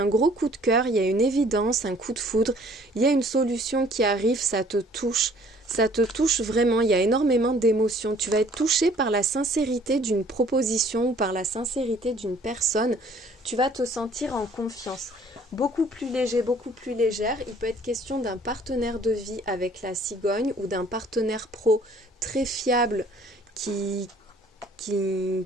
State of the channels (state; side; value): normal; both; correlation 0.56